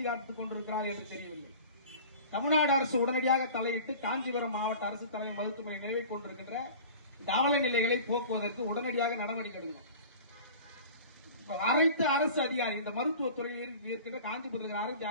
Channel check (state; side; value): inverted; both; correlation -0.40